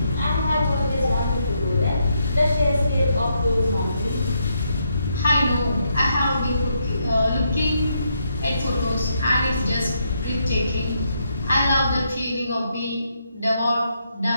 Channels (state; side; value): inverted; both; correlation -0.78